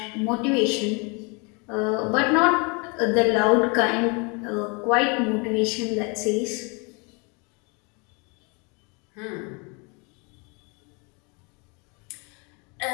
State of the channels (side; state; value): right; quieter; 31.5 dB